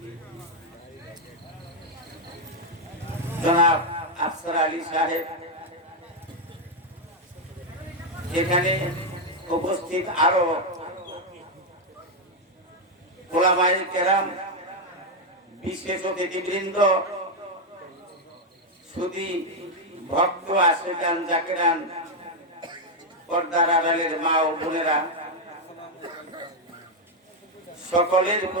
জনাব আফসার আলী সাহেব, এখানে উপস্থিত আরো ওলামায়ে কেরাম, বিশেষ অতিথিবৃন্দ, সুধী ভক্ত আশিকান জাকিরান, পর্দার আড়ালের মা ও বোনেরা, সকলের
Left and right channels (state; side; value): normal; both; correlation 0.02